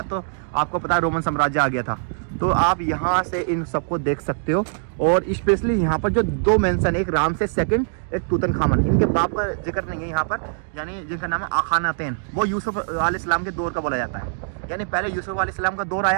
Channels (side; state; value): left; silent; digital silence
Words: तो आपको पता है रोमन साम्राज्य आ गया था। तो आप यहाँ से इन सबको देख सकते हो। और स्पेशली यहाँ पर जो 2 मेंशन, एक रामसेस सेकंड, एक तूतनखामन, इनके बाप का जिक्र नहीं है यहाँ पर, यानी जिनका नाम है अखानातेन। वो यूसुफ अलैहिस्सलाम के दौर का बोला जाता है, यानी पहले यूसुफ अलैहिस्सलाम का दौर